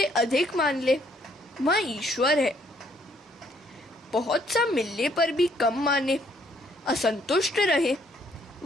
अधिक मान ले, वह ईश्वर है। बहुत सा मिलने पर भी कम माने, असंतुष्ट रहे,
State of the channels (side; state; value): both; normal; correlation 0.67